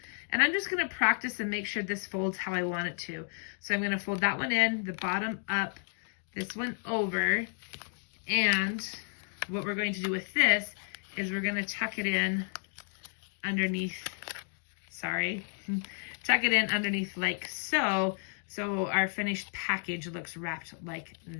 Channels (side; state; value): right; silent; digital silence